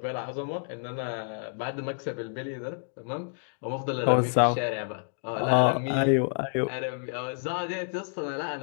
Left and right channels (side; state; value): right; silent; digital silence